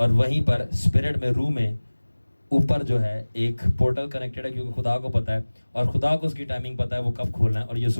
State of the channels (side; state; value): both; inverted; correlation -1.00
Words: وہیں پر اسپرٹ میں روح میں اوپر جو ہے ایک پورٹل کنیکٹڈ ہے, کیونکہ خدا کو پتہ ہے اور خدا کو اس کی ٹائمنگ پتہ ہے وہ کب کھولنا ہے, اور